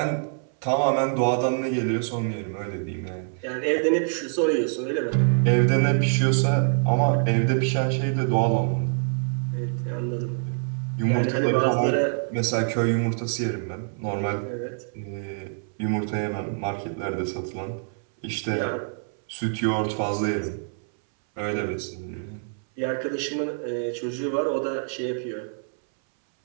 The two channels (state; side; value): silent; left; 61 dB below the other